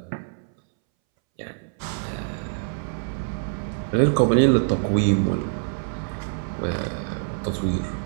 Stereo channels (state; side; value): silent; left; 62 dB below the other